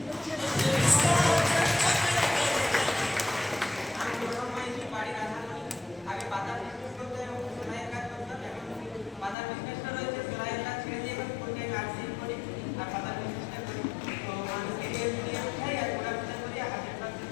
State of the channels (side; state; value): right; drops out; at 9.3 s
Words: বাড়ির আগে পাতার বিজনেস করতে এবং সেলাইয়ের কাজ করতাম। এখন পাতার বিজনেসটা রয়েছে, সেলাইয়ের কাজ ছেড়ে দিয়ে এখন ফুলটাইম নার্সিং করি আর পাতার বিজনেসটা করি। তো মানুষকে হেল্প দিয়ে উঠাই আর প্রোডাক্ট করি, 100%